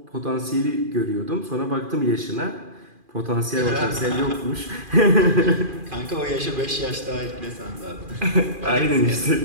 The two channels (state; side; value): late; left; 2.4 ms